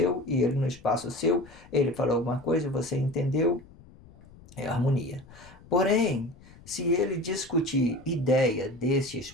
e ele no espaço seu. Ele falou alguma coisa, você entendeu, é harmonia. Porém, se ele discutir ideia desse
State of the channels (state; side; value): noise; left; rumble, 23 dB below the sound